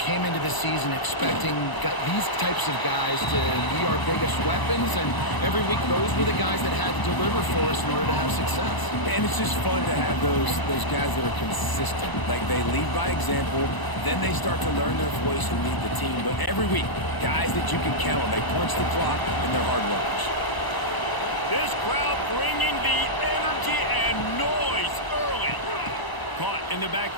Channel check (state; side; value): late; right; 1.0 ms